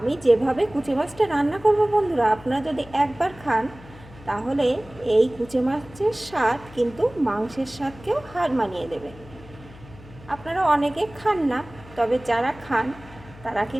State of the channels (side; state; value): left; noise; hum, 20 dB below the sound